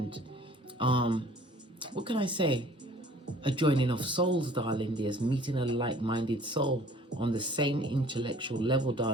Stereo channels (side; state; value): both; normal; correlation 0.52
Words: what can I say? A joining of souls, darling dears, meeting a like-minded soul on the same intellectual level,